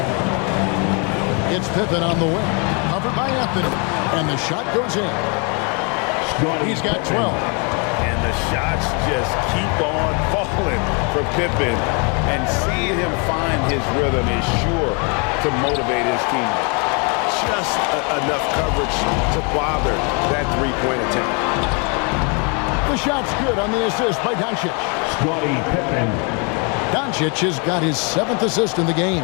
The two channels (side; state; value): right; quieter; 34.6 dB